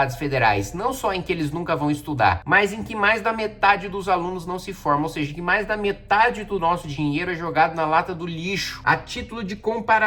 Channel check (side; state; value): both; identical; correlation 1.00